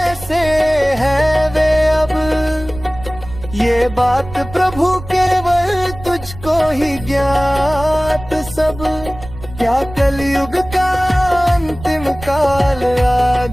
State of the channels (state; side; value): noise; right; rumble, 14 dB below the sound